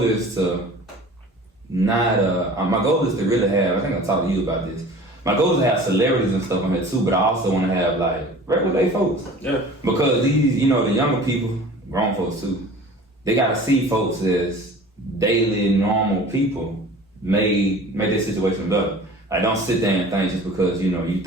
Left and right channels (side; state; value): both; normal; correlation 0.43